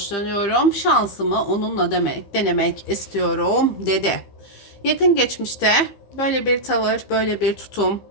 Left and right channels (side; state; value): right; late; 15 ms